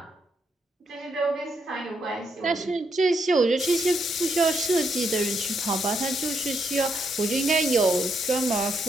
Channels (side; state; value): both; normal; correlation 0.78